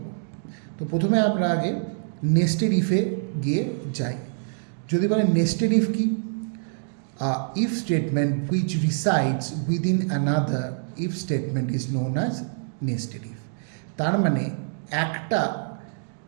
তো প্রথমে আমরা আগে নেস্টেড ইফে গিয়ে যাই। যদি বলে নেস্টেড ইফ কি, if statement which resides within another if statement is known as nested if. তার মানে একটা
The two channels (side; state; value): left; silent; digital silence